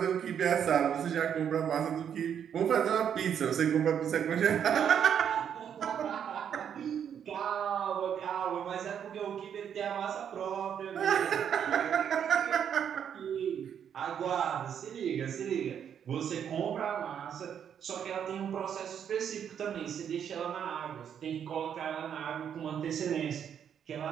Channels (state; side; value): quieter; left; 8.5 dB